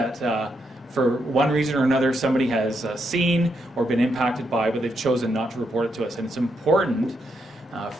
for one reason or another somebody has seen or been impacted by, but they've chosen not to report it to us. And it's important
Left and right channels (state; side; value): normal; both; correlation 0.80